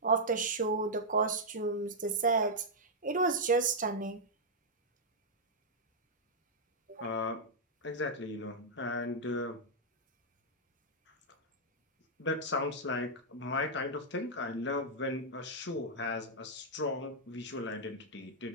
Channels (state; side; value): normal; both; correlation -0.06